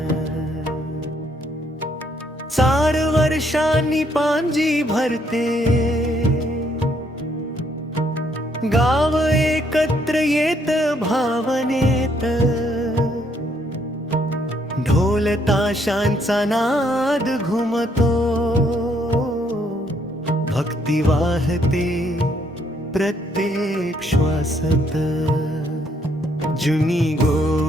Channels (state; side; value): normal; both; correlation 0.70